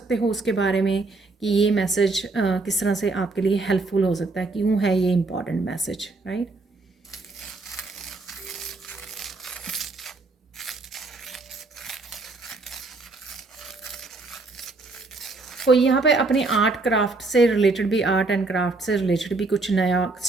हो उसके बारे में कि ये मैसेज किस तरह से आपके लिए हेल्पफुल हो सकता है, क्यों है ये इम्पॉर्टेंट मैसेज, राइट। कोई यहाँ पे अपने आर्ट क्राफ्ट से रिलेटेड भी, आर्ट एंड क्राफ्ट से रिलेटेड भी कुछ नया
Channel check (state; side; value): quieter; left; 3.5 dB